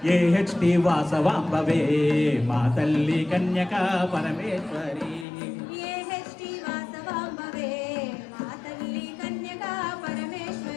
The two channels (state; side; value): drops out; right; at 5.2 s